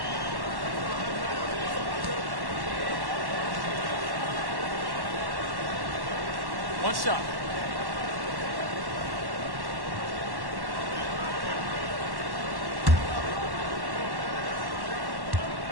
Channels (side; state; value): left; late; 1.1 ms